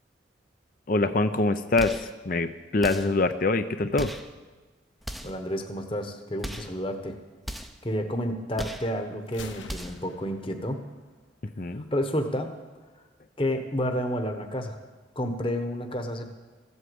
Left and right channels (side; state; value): both; normal; correlation 0.48